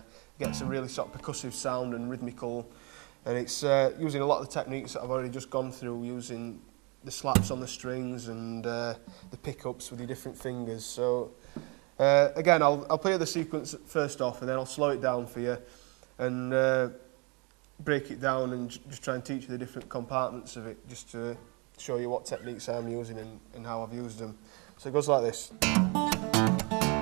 gets a really sort of percussive sound and rhythmical, and it's using a lot of the techniques that I've already just gone through, using the slaps on the strings and the pickups with your different fingers. So again, I'll play the sequence first off, and then I'll slow it down for you and break it down and just try and teach you the different compartments of it, just to show you what techniques I'm using and how I've used them. So it goes like this.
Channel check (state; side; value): quieter; left; 31.0 dB